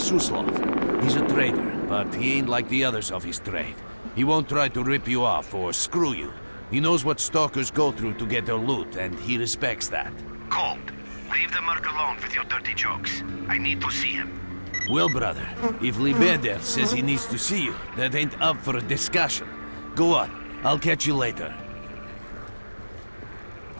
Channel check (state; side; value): inverted; both; correlation -1.00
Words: He's a trader, but he ain't like the others of his trade. He won't try to rip you off or screw you. He knows what stalkers go through to get their loot, and he respects that. Cold, leave the merc alone with your dirty jokes. I need to see him. Well, brother, if Lebedev says he needs to see you, that ain't up for a discussion. Go on, I'll catch you later.